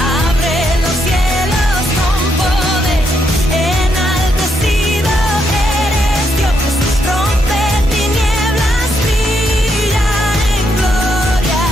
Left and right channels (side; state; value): both; normal; correlation 0.78